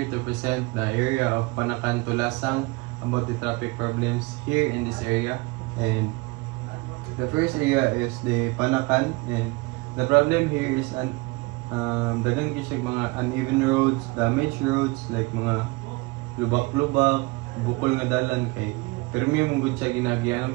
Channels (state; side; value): quieter; left; 24.4 dB